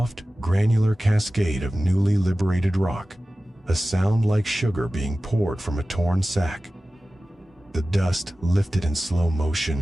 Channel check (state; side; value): normal; both; correlation 0.96